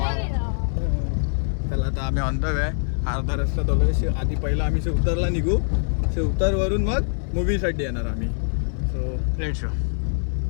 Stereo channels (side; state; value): right; silent; 63 dB below the other